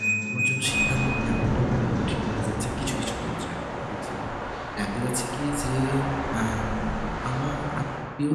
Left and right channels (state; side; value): identical; both; correlation 1.00